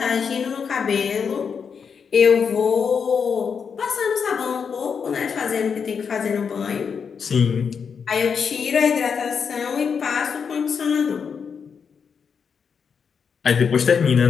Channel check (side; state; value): right; quieter; 6.4 dB